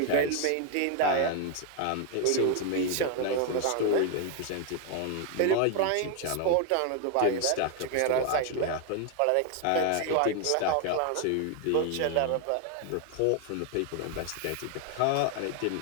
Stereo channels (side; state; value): both; different; correlation 0.01